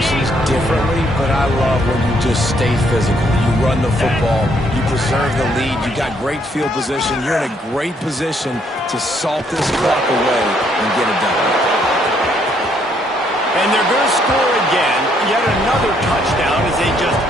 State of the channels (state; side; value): normal; both; correlation 0.70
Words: differently, but I love when you just stay physical. You run the football, you preserve the lead, you got great field position, you're in a great position to salt this clock away and get it done. And they're going to score again, yet another touchdown as they just